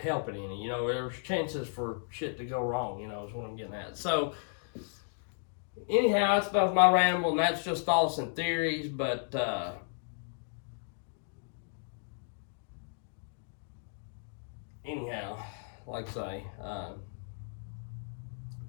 help it any. You know, there's chances for shit to go wrong. You know, is what I'm getting at. So, anyhow, that's enough of my ramble, and that's just thoughts and theories. But anyhow, like I say,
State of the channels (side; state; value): right; silent; digital silence